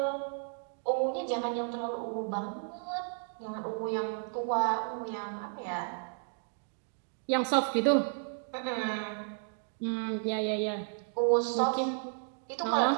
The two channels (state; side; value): silent; left; digital silence